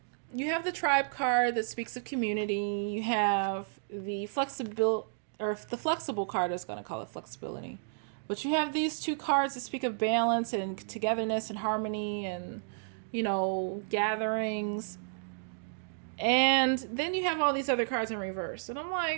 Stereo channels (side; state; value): left; silent; digital silence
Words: you have the tribe card that speaks of community. You have the flexible card, I was going to call it flexibility. But you have these two cards that speak of balance and togetherness and harmony and, gatherings. And then you have all these other cards in reverse. And I'm